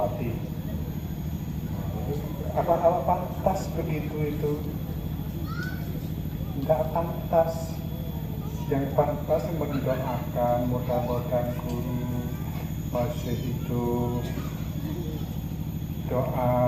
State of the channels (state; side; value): identical; both; correlation 1.00